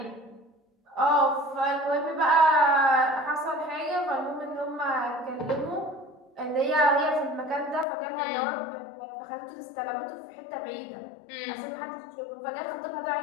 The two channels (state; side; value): drops out; right; at 7.9 s